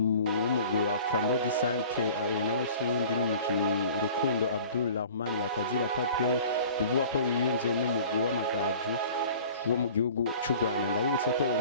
wa Flambeau du Centre abona usundi n'umukinyi Rukundo Abdulrahman batazira Paplay bivuga ko yiyunze n'umugwi w'amagaju wo mu gihugu cy'u Rwanda. Ndabibutse ko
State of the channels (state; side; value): inverted; both; correlation -0.45